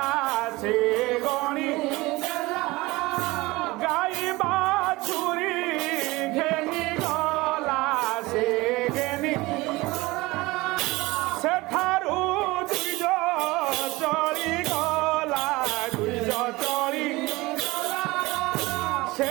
সে গণি গাই বাছুরি ঘেনি সেঠারু দুইজ চলি গলা দুইজ চলি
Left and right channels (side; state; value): left; quieter; 21.3 dB